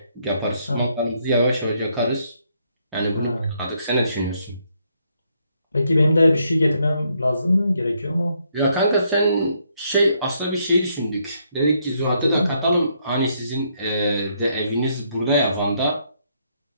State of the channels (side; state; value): both; inverted; correlation -0.73